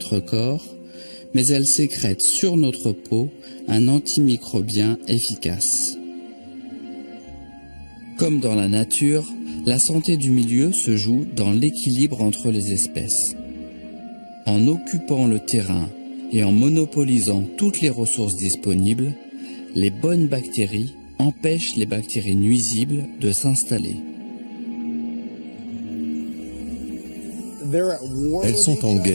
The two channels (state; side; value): inverted; both; correlation -1.00